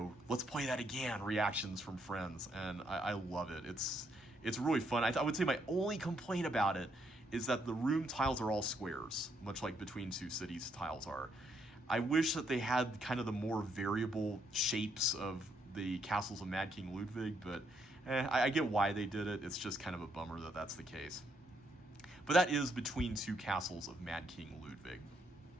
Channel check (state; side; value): normal; both; correlation 0.74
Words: let's play that again reactions from friends, and I love it. It's really fun. I would say my only complaint about it is that the room tiles are all squares, much like Between Two Cities tiles are. I wish that they had kind of the more variable shapes of the Castles of Mad King Ludwig, but I get why they did it. It's just kind of a bummer that that's the case. But that is Between Two Castles of Mad King Ludwig.